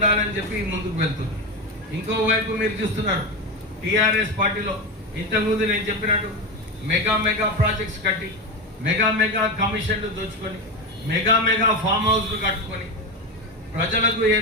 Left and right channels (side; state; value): both; normal; correlation 0.17